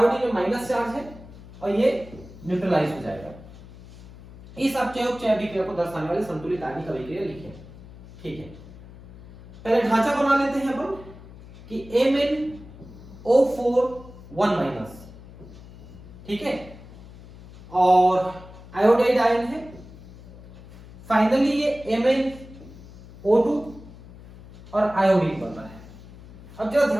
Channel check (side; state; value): left; noise; hum, 18 dB below the sound